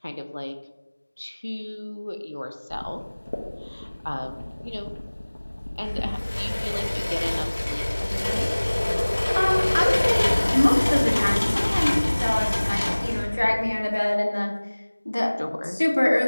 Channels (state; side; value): inverted; both; correlation -1.00